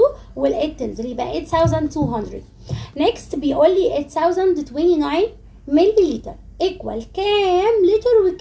وال8 تنزل يبقى 8200. next بيقول لي 8029 ملي لتر ايكوال كام لتر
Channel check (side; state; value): both; identical; correlation 1.00